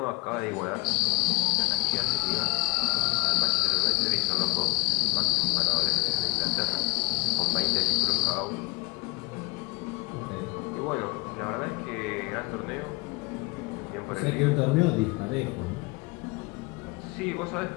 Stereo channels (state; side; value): quieter; right; 21.5 dB